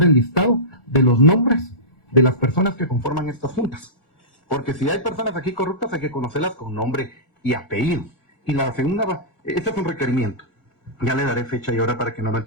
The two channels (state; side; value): late; right; 1.4 ms